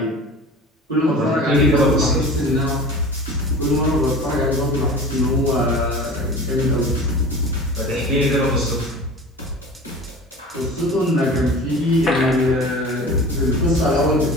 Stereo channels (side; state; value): both; normal; correlation 0.37